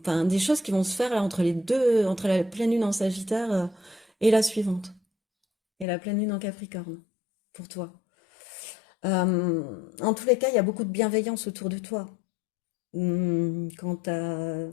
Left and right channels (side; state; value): right; drops out; at 5.9 s